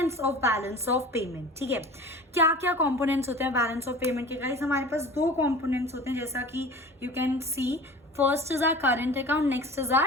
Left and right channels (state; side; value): normal; both; correlation 0.40